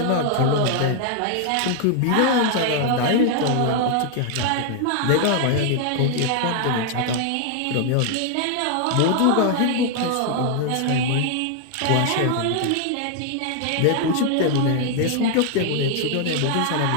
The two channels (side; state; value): both; different; correlation 0.00